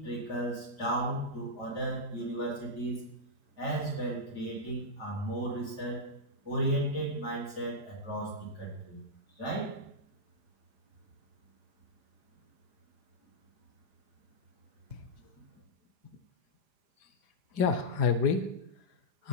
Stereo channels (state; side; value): late; left; 4.9 ms